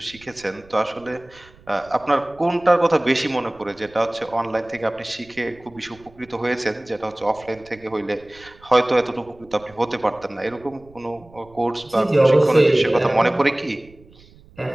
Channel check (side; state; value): right; noise; rumble, 25 dB below the sound